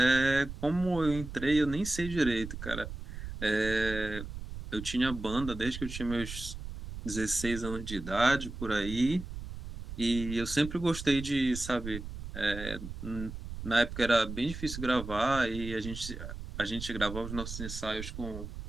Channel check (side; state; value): right; noise; rumble, 9 dB below the sound